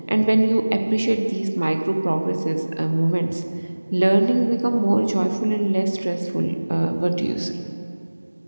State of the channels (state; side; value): inverted; both; correlation -1.00